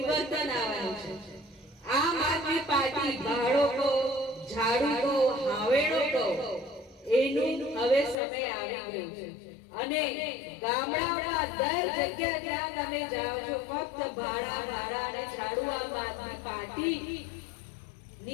આવવાનું છે. આમ આદમી પાર્ટી ભાડો કહો, ઝાડુ કહો, હાવેડો કહો, એનું હવે સમય આવી ગયું છે. અને ગામડામાં દર જગ્યા જ્યાં તમે જાઓ છો, ફક્ત ભાડા ભાડા અને ઝાડુ આમ આદમી પાર્ટી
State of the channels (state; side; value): drops out; right; at 8.2 s